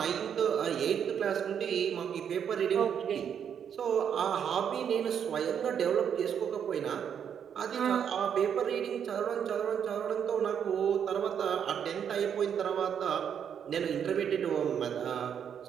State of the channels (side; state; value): left; quieter; 8.2 dB